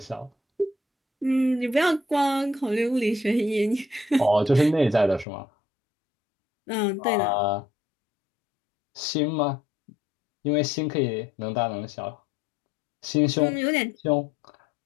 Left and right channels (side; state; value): right; drops out; at 5.2 s